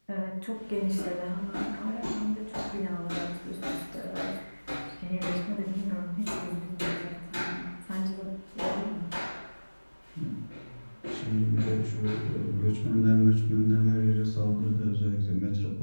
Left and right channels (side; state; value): both; inverted; correlation -1.00